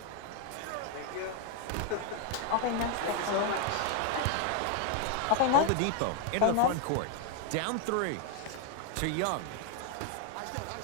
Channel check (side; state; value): both; different; correlation 0.01